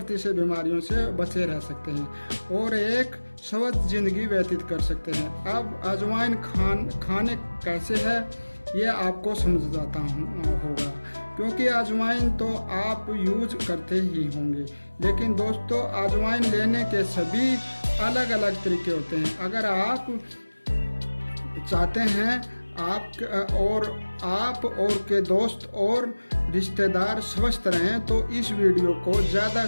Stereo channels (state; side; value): inverted; both; correlation -1.00